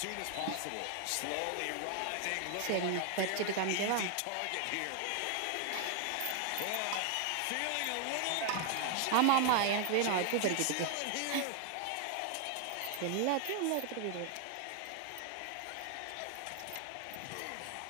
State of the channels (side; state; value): both; different; correlation 0.01